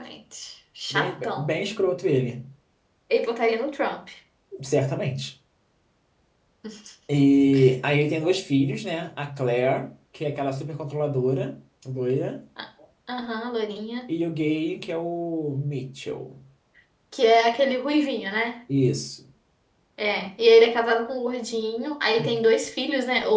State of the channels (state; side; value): identical; both; correlation 1.00